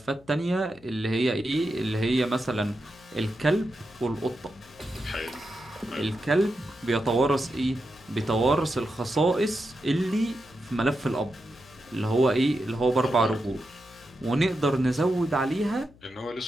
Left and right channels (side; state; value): left; noise; hum, 26 dB below the sound